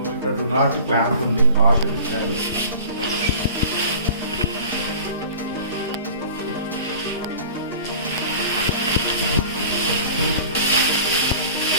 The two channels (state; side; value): inverted; both; correlation -0.42